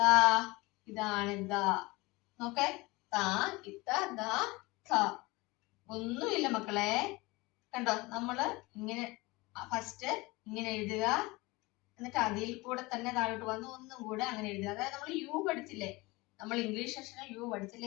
ഇതാണ് ദ. നോക്കേ, താ ഇത്ത ദ ഖ. ഒന്നുമില്ല മക്കളെ, കണ്ടോ? നമ്മള് ഇങ്ങനെ ഫസ്റ്റ് ഇങ്ങനെ എഴുതുക, എന്നിട്ട് അതിൽ കൂടെ തന്നെ താഴോട്ട് വന്ന് ഒന്നും കൂടെ അങ്ങനെ എഴുതുക. അതായത് നമ്മൾ യു പഠിച്ചില്ലേ, നമ്മൾ ഇംഗ്ലീഷ് സെക്ഷനിൽ യു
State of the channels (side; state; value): right; quieter; 22.9 dB